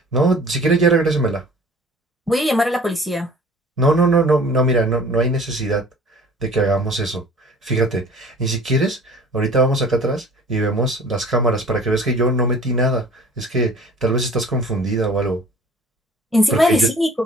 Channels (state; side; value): normal; both; correlation 0.48